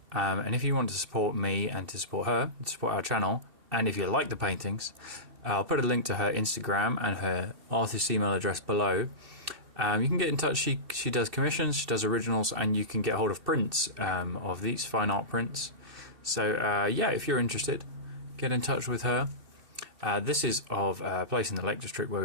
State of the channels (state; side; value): late; left; 2.6 ms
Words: And if you want to support me and to support her, to support our channel, and if you like the paintings, I'll put a link to her Instagram and her artist email address below. You can get in touch. She does commissions, she does originals, and you can get hold of prints of these fine art prints. So yeah, if you're interested, get in touch with her. This is of a place in the Lake District where